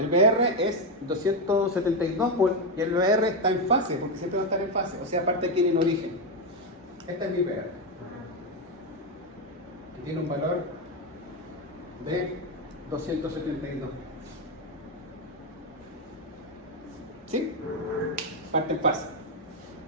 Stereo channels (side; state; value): both; normal; correlation 0.07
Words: el BR es 272 volts y el BR está en fase, porque siempre va a estar en fase, o sea, aparte aquí en origen. Este es mi BR. Que tiene un valor de 272. ¿Sí? Parte en fase.